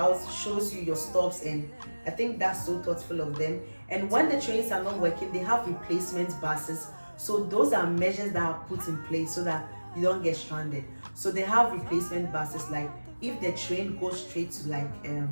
shows you your stops, and I think that's so thoughtful of them. And when the trains are not working, they have replacement buses. So those are measures that are put in place so that you don't get stranded. So they have replacement buses, like if the train goes straight to like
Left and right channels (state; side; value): inverted; both; correlation -1.00